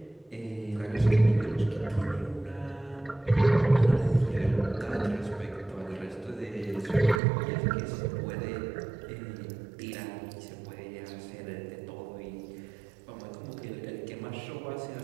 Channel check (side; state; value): left; drops out; at 7.2 s